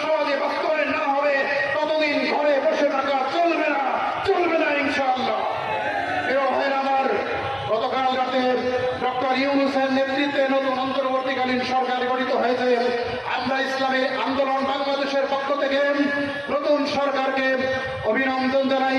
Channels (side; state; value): both; identical; correlation 1.00